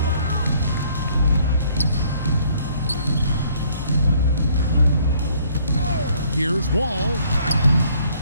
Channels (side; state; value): both; inverted; correlation -0.62